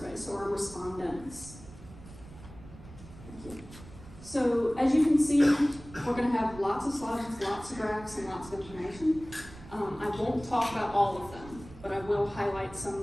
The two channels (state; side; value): noise; right; rumble, 17 dB below the sound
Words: so our respondents. Thank you. So as you can see, we're going to have lots of slides, lots of graphs, and lots of information. I won't talk about all of them, but I will highlight